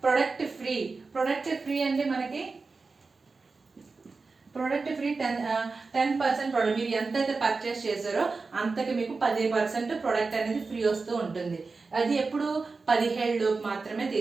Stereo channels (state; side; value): quieter; left; 4.2 dB